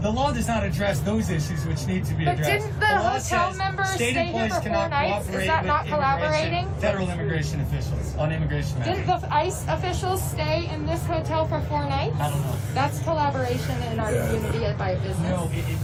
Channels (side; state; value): both; identical; correlation 1.00